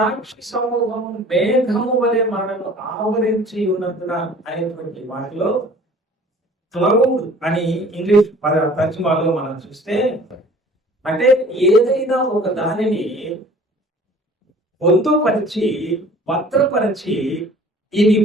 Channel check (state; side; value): normal; both; correlation 0.49